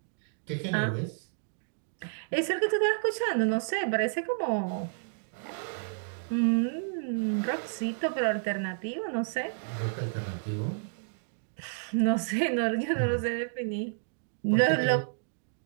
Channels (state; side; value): silent; left; digital silence